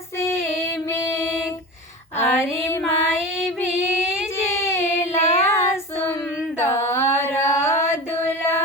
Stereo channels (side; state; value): both; normal; correlation 0.30